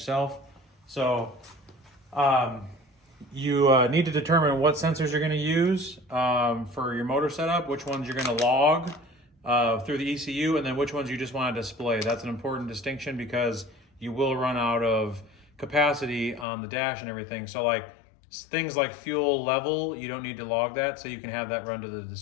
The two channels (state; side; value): drops out; right; at 16.4 s